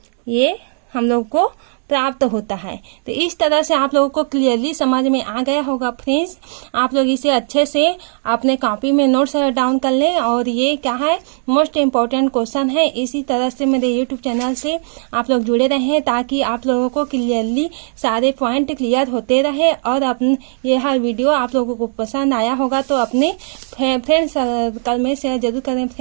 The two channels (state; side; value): silent; left; digital silence